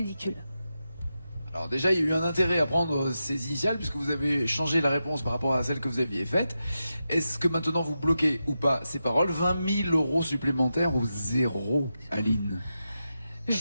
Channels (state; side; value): inverted; both; correlation -0.89